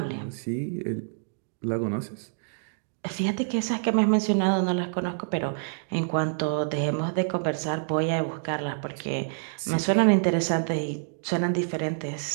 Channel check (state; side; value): silent; left; digital silence